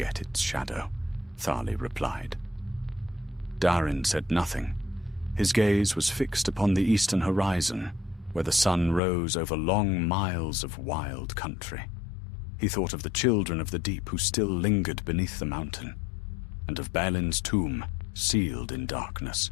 its shadow," Thali replied. Darin said nothing. His gaze was fixed upon the eastern horizon, where the sun rose over long miles of wild country. He thought of the children of the deep who still lingered beneath the mountain, and of Balin's tomb, sealed in darkness.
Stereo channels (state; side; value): drops out; right; at 9.0 s